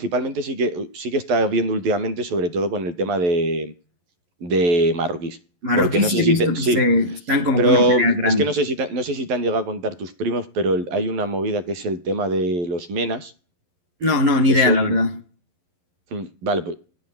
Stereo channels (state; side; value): late; left; 11 ms